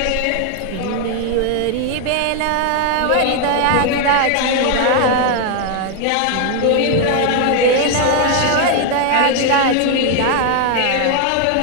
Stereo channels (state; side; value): different; both; correlation 0.00